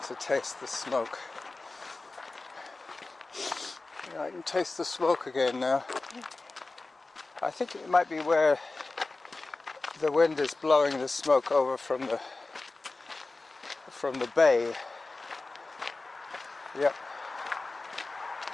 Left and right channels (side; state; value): right; quieter; 3.4 dB